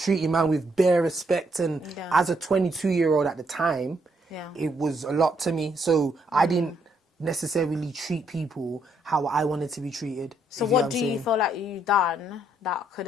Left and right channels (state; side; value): normal; both; correlation 0.73